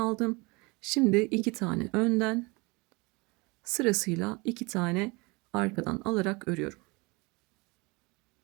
Şimdi 2 tane önden sırasıyla 2 tane arkadan alarak örüyorum.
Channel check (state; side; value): quieter; left; 26.5 dB